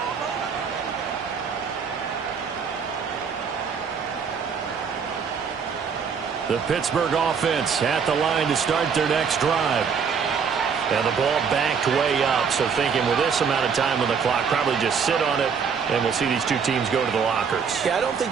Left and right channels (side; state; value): left; quieter; 6.3 dB